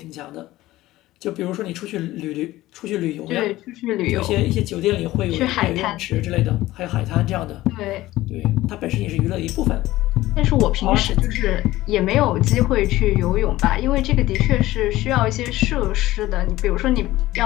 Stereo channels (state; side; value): quieter; right; 16.7 dB